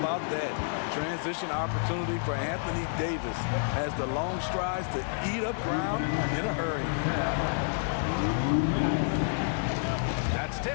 that? Transition opportunity for Anthony Davis has the long strides to eat up ground in a hurry. That's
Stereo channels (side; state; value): right; silent; digital silence